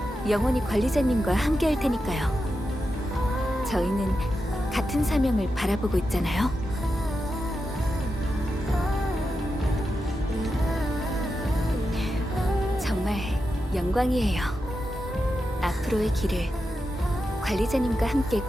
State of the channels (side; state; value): both; normal; correlation 0.89